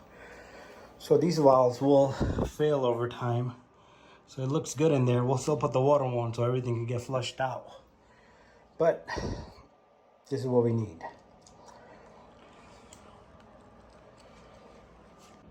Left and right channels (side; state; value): both; identical; correlation 1.00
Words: So these valves will fail over time. So it looks good in there. We'll still put the water on so everything can get flushed out. But this is what we need.